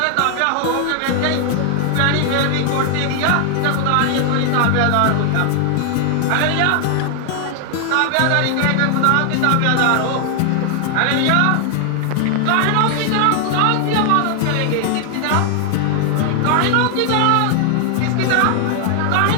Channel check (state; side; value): different; both; correlation 0.00